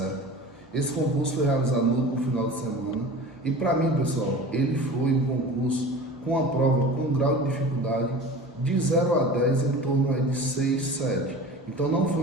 Esse concurso foi realizado no final de semana e para mim, pessoal, ele foi um concurso com a prova com um grau de dificuldade de 0 a 10 em torno aí de 6, 7. Então não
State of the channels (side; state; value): both; normal; correlation 0.37